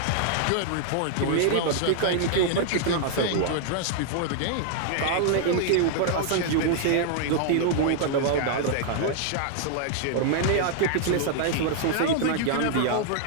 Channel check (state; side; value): different; both; correlation -0.01